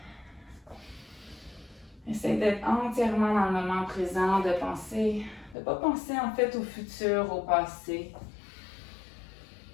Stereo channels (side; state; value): right; drops out; at 5.6 s